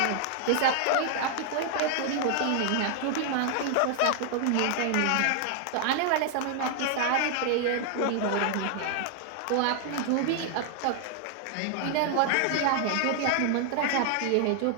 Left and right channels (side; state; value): both; different; correlation 0.00